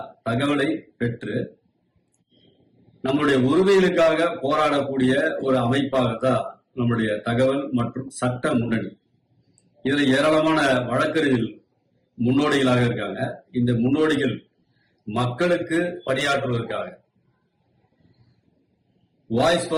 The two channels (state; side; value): identical; both; correlation 1.00